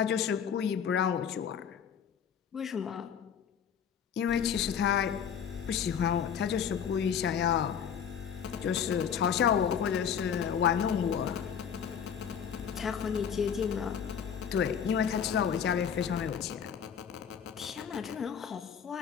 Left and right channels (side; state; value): right; quieter; 7.8 dB